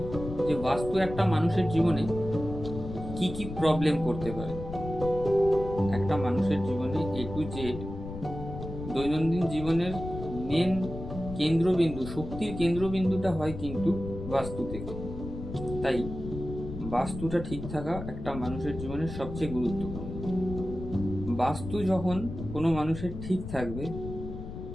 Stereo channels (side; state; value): left; noise; rumble, 9 dB below the sound